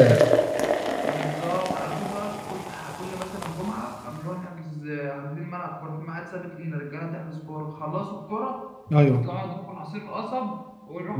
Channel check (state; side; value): identical; both; correlation 1.00